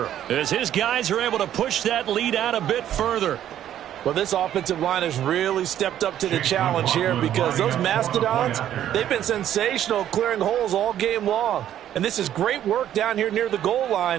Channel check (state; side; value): quieter; left; 11.2 dB